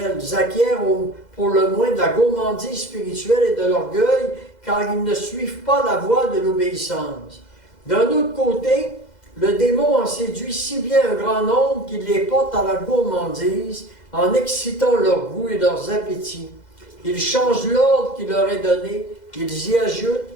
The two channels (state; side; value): late; right; 2.0 ms